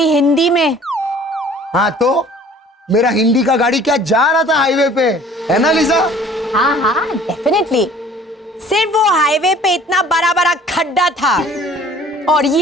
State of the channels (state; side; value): normal; both; correlation 0.51